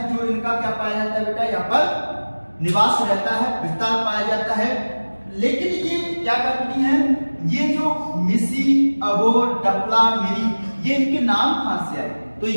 जो इनका क्या पाया जाता है बेटा? यहाँ पर निवास रहता है, विस्तार पाया जाता है। लेकिन ये क्या करती हैं? ये जो मिसी, अगोर, डफला, मिरी, ये इनके नाम कहां से आए? तो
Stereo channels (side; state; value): both; inverted; correlation -1.00